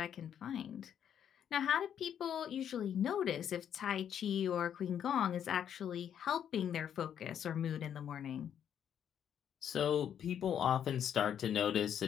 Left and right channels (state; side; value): quieter; right; 9.1 dB